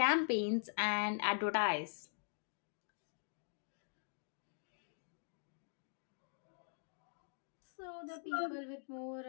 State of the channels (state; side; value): silent; right; digital silence